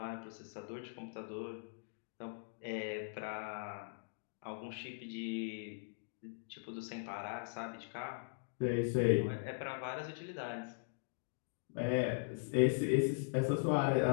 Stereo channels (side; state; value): right; silent; digital silence